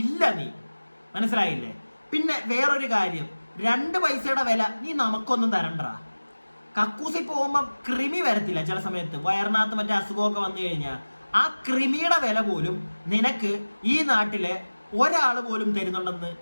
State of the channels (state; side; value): inverted; both; correlation -1.00